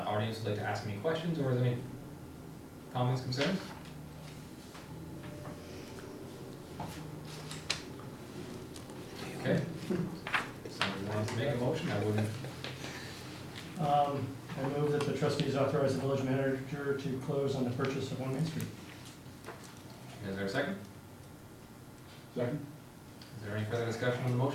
would like to ask any questions, or is there any comments, concerns? Okay. Somebody wants to make a motion, I wouldn't. I move that the trustees authorize the village manager to close on the purchase of 1 Main Street. Is there a second? Second? Is there any further discussion on the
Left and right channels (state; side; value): identical; both; correlation 1.00